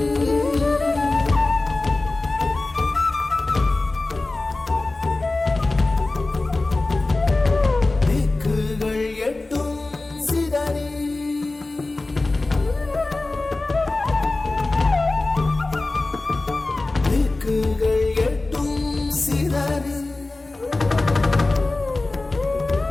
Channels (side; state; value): right; quieter; 3.1 dB